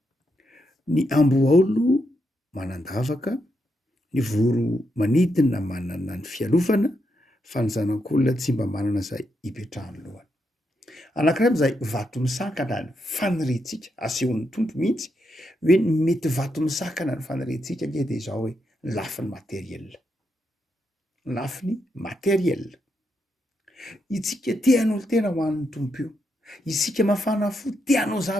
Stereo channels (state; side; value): normal; both; correlation 0.82